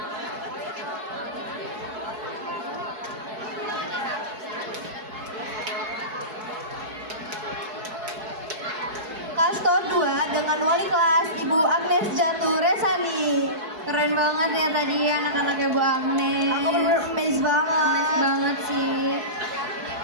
dengan wali kelas Ibu Agnes Jatuh Resani. Keren banget ya tadi anak-anaknya Bu Agnes. Aku bener-bener amazed banget. Amazed banget sih.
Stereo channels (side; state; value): left; late; 4.7 ms